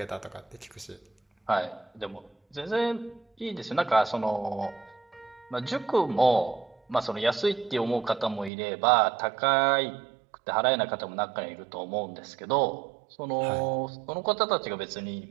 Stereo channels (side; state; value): left; drops out; at 8.5 s